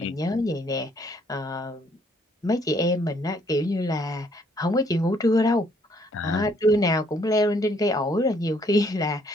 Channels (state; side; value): normal; both; correlation 0.66